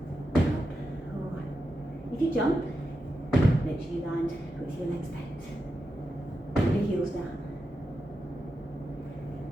Up. 1. If you jump, make sure you land with your legs bent. Your heels down.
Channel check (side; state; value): both; normal; correlation 0.88